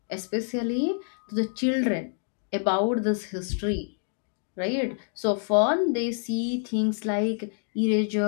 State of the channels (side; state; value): right; silent; 60 dB below the other